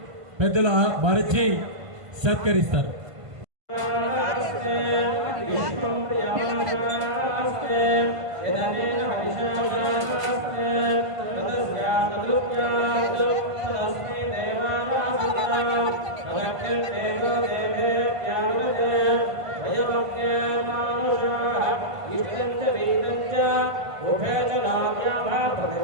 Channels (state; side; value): late; left; 1.5 ms